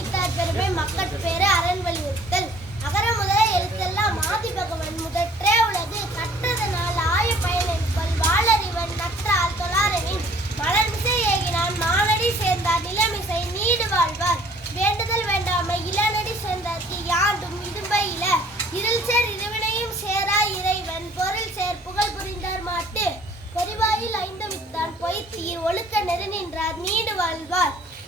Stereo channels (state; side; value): normal; both; correlation 0.55